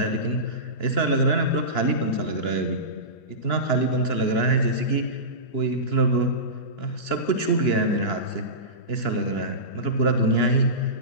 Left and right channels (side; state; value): right; late; 2.9 ms